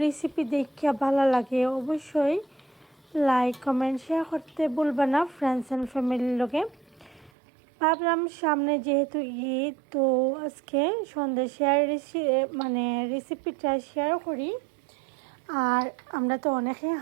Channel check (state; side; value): drops out; left; at 7.3 s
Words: রেসিপি দেখিয়া ভালো লাগে অবশ্যই লাইক কমেন্ট শেয়ার করতে ভুলবেন না ফ্রেন্ডস অ্যান্ড ফ্যামিলির লগে। ভাবলাম সামনে যেহেতু ঈদ, তো আজকে সন্দেশের রেসিপিটা শেয়ার করি। আর আমরা তো অনেকেই